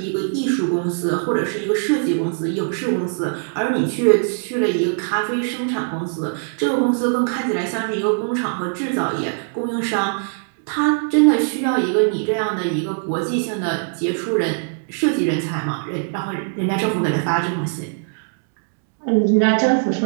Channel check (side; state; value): left; silent; 65 dB below the other